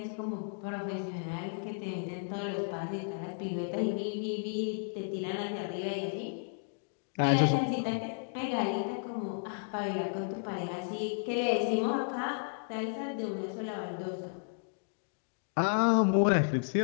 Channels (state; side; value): silent; right; digital silence